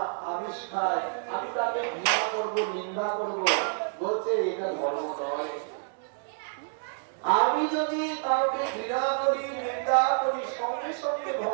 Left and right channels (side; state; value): left; silent; digital silence